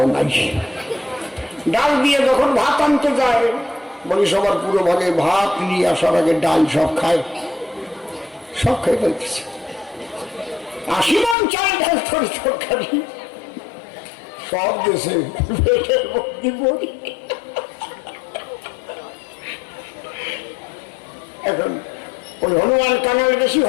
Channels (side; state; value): right; drops out; at 11.4 s